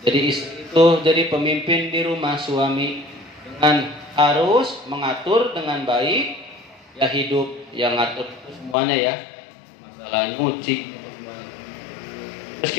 Jadi istri itu jadi pemimpin di rumah suami dengan harus mengatur dengan baik ya, hidup yang ngatur semuanya ya, masalah nyuci semuanya.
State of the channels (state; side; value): drops out; right; at 8.8 s